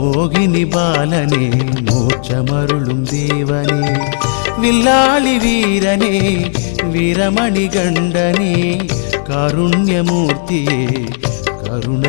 பாலனே, மோட்சமருளும் தேவனே. வில்லாளி வீரனே, வீரமணி கண்டனே, காருண்யமூர்த்தியே,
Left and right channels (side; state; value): right; silent; digital silence